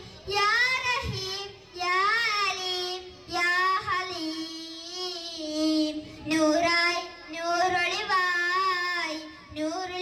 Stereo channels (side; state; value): both; identical; correlation 1.00